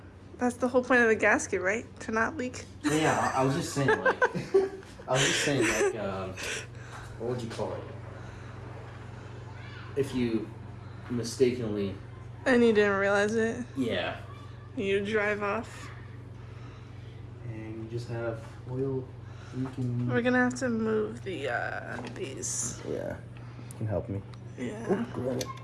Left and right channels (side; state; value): both; identical; correlation 1.00